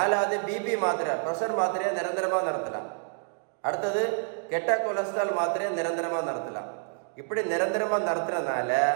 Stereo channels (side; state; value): left; silent; 59 dB below the other